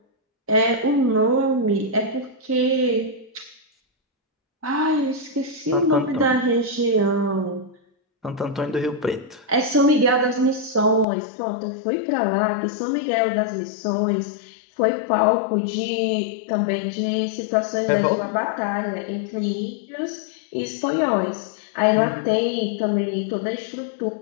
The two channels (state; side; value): drops out; right; at 11.1 s